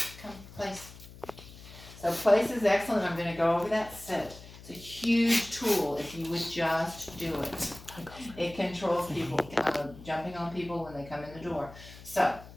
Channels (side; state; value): left; noise; hum, 17 dB below the sound